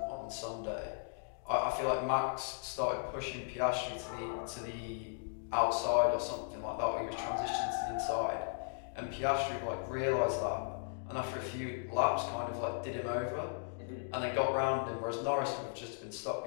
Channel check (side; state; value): right; silent; digital silence